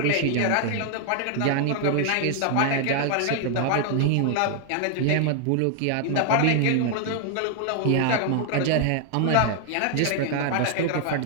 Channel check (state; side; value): different; both; correlation 0.00